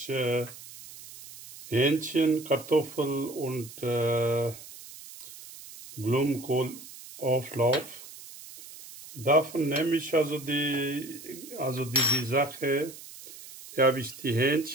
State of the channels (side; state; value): right; noise; hiss, 16 dB below the sound